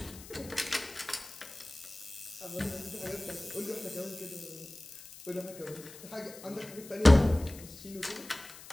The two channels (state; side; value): noise; left; hiss, 17 dB below the sound